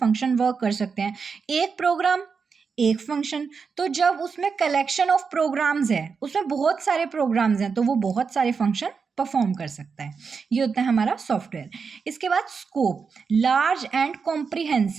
वर्क कर सकते हैं। एक प्रोग्राम एक फंक्शन, तो जब उसमें कलेक्शन ऑफ प्रोग्राम्स है, उसमें बहुत सारे प्रोग्राम्स हैं, तो वो बहुत सारे फंक्शन परफॉर्म कर सकता है। ये होता है हमारा सॉफ्टवेयर। इसके बाद scope, large and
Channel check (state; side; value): quieter; left; 5.5 dB